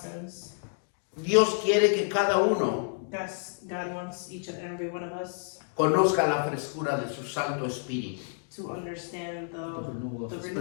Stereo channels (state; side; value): silent; right; digital silence